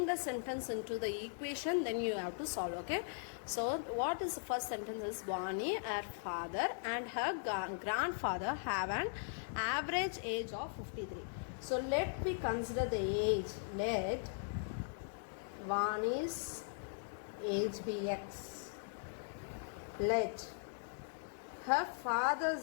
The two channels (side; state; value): right; silent; digital silence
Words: the sentence into the equation, then you have to solve. Okay. So what is the first sentence is Vani, her father and her grandfather have an average age of 53. So let me consider the age. Let Vani's age be x. Let her